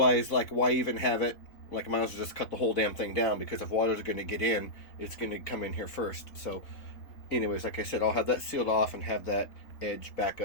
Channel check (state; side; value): late; right; 3.8 ms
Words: like, why even have it? Like, I might as well just cut the whole damn thing down, because if water's going to get in, it's going to come in here first. So anyways, like I said, I'll have that sealed off and have that edge back